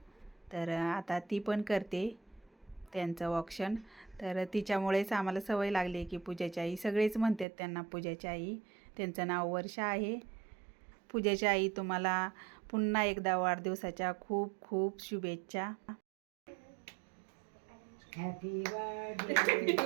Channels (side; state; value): left; drops out; at 7.5 s